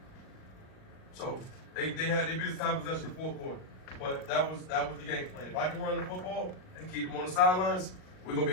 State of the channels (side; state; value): right; late; 38 ms